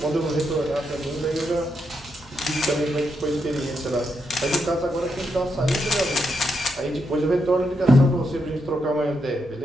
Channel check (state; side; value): normal; both; correlation 0.82